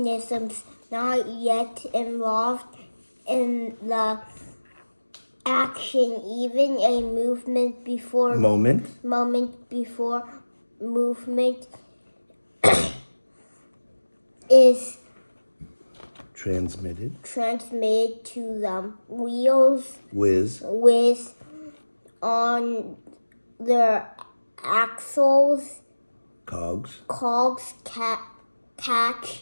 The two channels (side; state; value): both; inverted; correlation -1.00